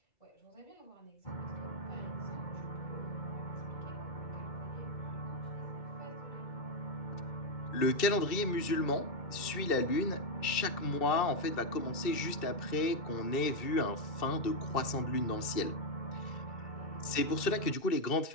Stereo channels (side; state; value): right; late; 2.7 ms